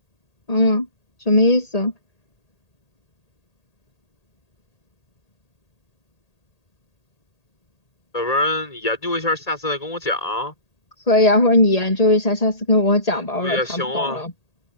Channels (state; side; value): late; right; 1.8 ms